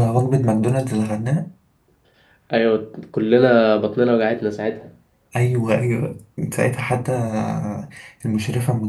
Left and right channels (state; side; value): identical; both; correlation 1.00